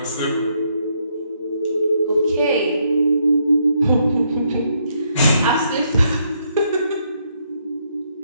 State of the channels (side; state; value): both; inverted; correlation -0.74